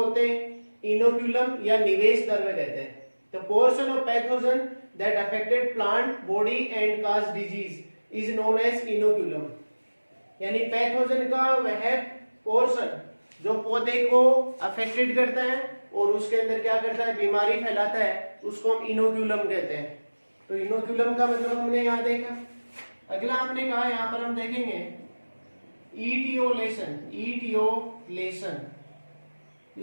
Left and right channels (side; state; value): both; inverted; correlation -1.00